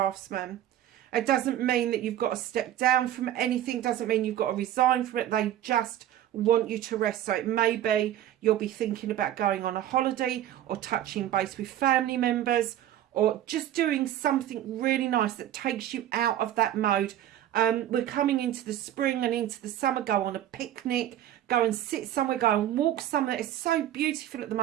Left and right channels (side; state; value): left; quieter; 12.1 dB